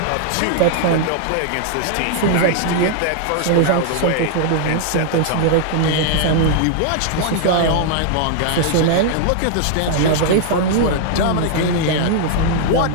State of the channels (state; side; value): different; both; correlation -0.01